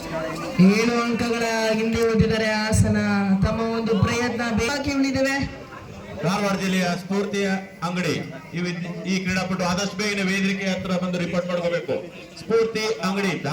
ಏಳು ಅಂಕಗಳ ಹಿಂದೆ ಉಳಿದಿದ್ದಾರೆ ಹಾಸನ. ತಮ್ಮ ಒಂದು ಪ್ರಯತ್ನ ಬಾಕಿ ಉಳಿದಿವೆ. ಧಾರವಾಡ ಜಿಲ್ಲೆಯ ಸ್ಫೂರ್ತಿ ಅಂಗಡಿ ಈ ಕ್ರೀಡಾಪಟು ಆದಷ್ಟು ಬೇಗನೆ ವೇದಿಕೆ ಹತ್ರ ಬಂದು ರಿಪೋರ್ಟ್ ಮಾಡ್ಕೋಬೇಕು. ಸ್ಫೂರ್ತಿ ಅಂಗಡಿ,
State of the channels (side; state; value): both; identical; correlation 1.00